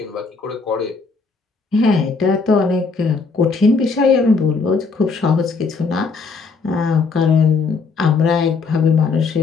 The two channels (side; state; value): right; quieter; 4.5 dB